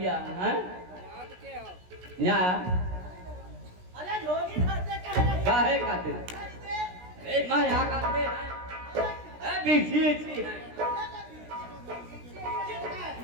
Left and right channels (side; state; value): left; late; 16 ms